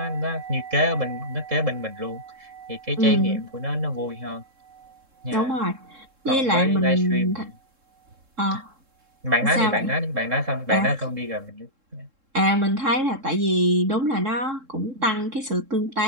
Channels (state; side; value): late; left; 3.7 ms